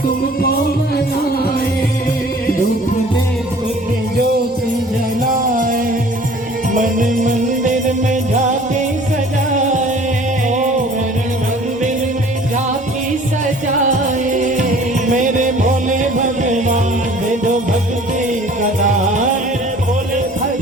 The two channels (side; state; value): both; normal; correlation 0.50